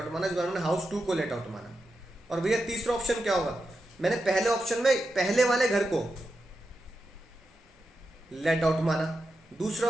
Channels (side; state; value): both; normal; correlation 0.89